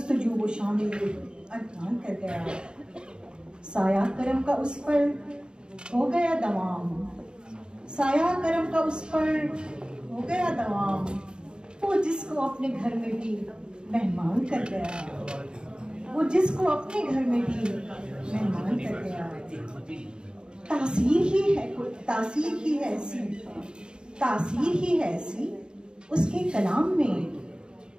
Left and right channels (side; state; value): left; late; 0.049 ms